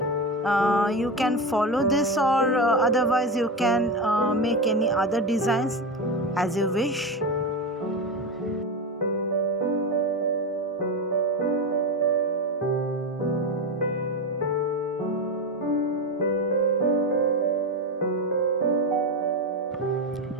You can follow this, or otherwise you can make any other designs as you wish.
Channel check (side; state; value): both; normal; correlation 0.18